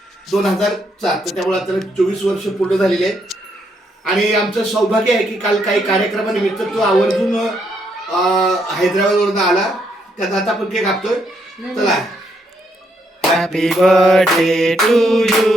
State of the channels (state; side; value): normal; both; correlation 0.75